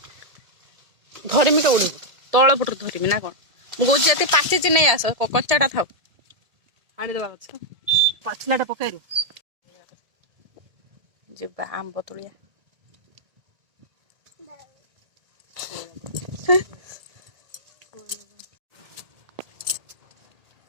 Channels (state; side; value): late; left; 1.7 ms